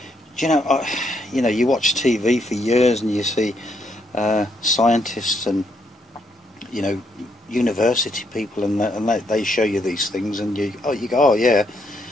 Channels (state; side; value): normal; both; correlation 0.74